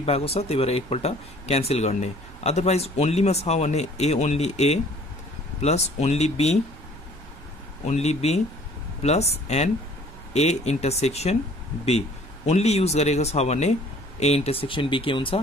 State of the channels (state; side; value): noise; right; rumble, 19 dB below the sound